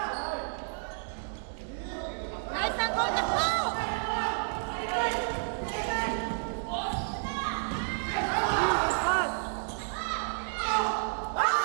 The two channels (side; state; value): left; silent; 57 dB below the other